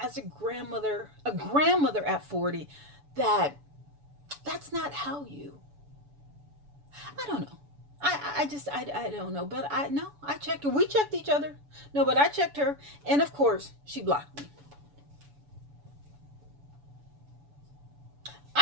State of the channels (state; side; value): late; left; 7.0 ms